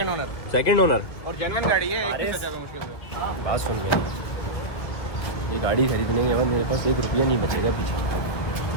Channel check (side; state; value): right; late; 1.7 ms